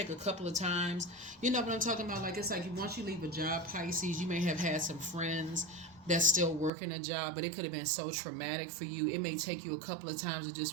take a couple of times. You know what I'm talking about? Like it's like once you leave a job, Pisces, you may have had some friends that's still working a job, but it could have been so traumatic for you. It may take you a couple of times of just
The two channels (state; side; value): drops out; left; at 6.7 s